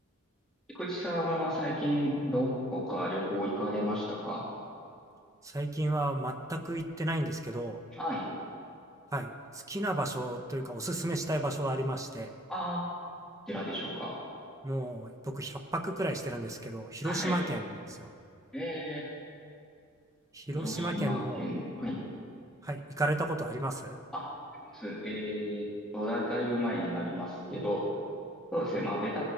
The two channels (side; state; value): both; normal; correlation 0.59